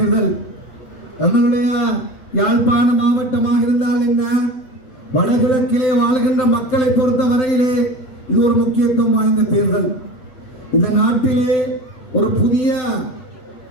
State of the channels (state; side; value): late; right; 7.8 ms